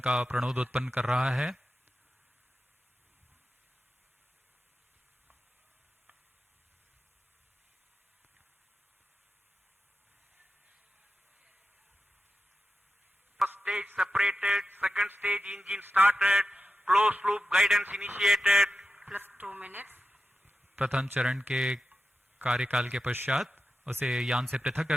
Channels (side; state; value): both; normal; correlation 0.91